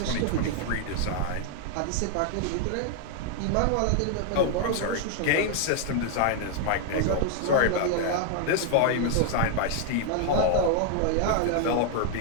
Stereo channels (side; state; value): both; different; correlation 0.00